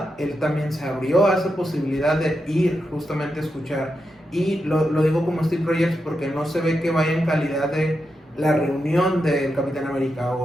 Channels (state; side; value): normal; both; correlation 0.86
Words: él también se abrió a esa posibilidad de ir justamente a escuchar. Y lo digo como Steve Rogers porque no se ve que vaya en calidad de la reunión del Capitán América